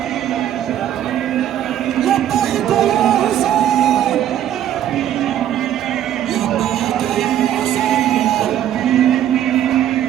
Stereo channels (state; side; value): quieter; left; 11.1 dB